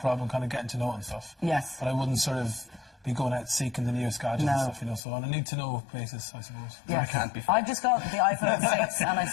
kind of getting to know it and stuff. Yes. But I wouldn't sort of be going out seeking the newest gadgets and stuff, So on a need-to-know basis, I suppose. Yeah. I can't be. I've just got the iPhone 6 and I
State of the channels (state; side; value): drops out; right; at 5.0 s